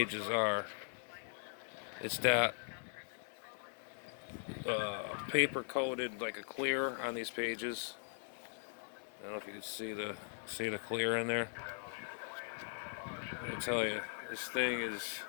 are. It's that paper coated like a clear on these pages. I don't know if you can see the clear in there. I tell you, this thing is.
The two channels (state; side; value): silent; right; digital silence